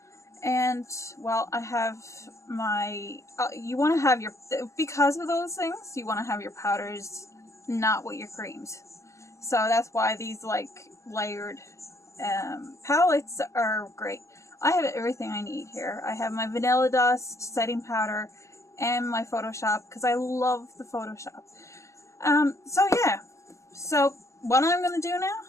And, well, I have my, you want to have your, because of those things, you want to have your powders not with your creams. So that's why these, like, layered palettes are great. I have everything I need here. I have my Vanilla Dust, setting powder, and my Photoshop, because I love the Photoshop. So yeah. So what I'm going to do now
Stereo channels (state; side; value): late; right; 0.14 ms